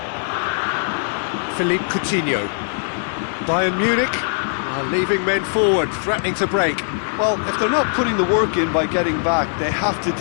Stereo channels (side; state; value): right; silent; 65 dB below the other